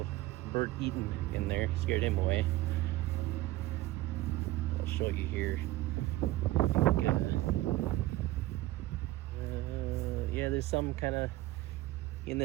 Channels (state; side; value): quieter; left; 17.4 dB